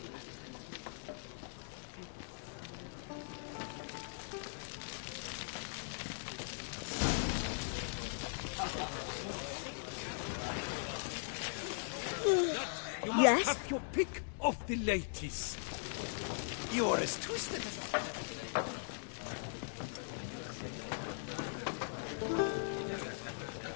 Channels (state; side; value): silent; right; digital silence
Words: Yes? Have your pick of the ladies. You're as twisted as a flagon of vinegar.